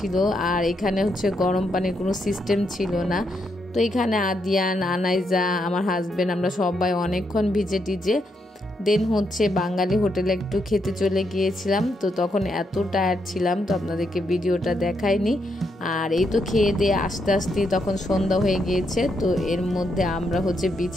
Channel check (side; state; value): both; normal; correlation 0.79